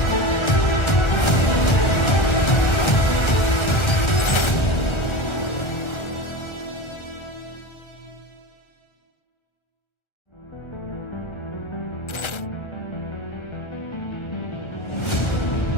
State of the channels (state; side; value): late; right; 1.3 ms